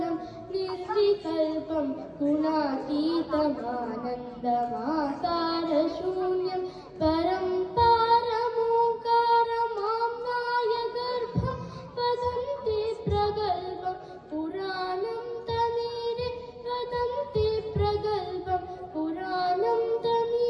निर्विकल्पं गुणातीतमानन्दमाकारशून्यं परं पारमोङ्कारमाम्नाय गर्भं वदन्ति प्रगल्भं पुराणं तमीरे वदन्ति प्रगल्भं पुराणं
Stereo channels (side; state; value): both; identical; correlation 1.00